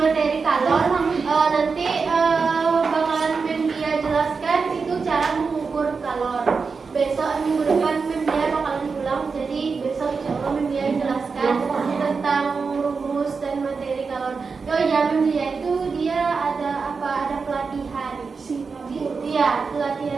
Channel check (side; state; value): left; quieter; 4.9 dB